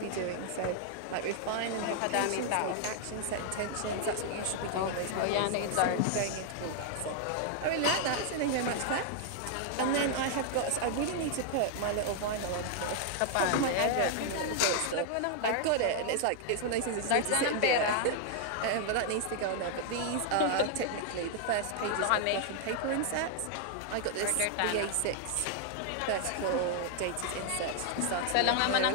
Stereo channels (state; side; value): different; both; correlation 0.00